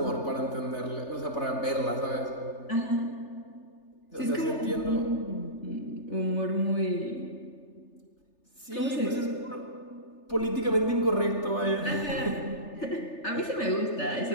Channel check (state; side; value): late; right; 3.3 ms